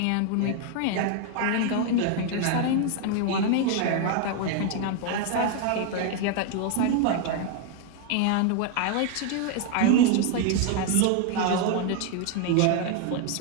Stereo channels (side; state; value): both; different; correlation 0.00